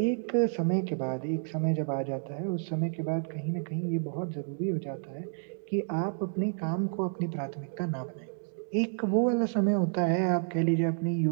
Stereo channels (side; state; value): left; silent; digital silence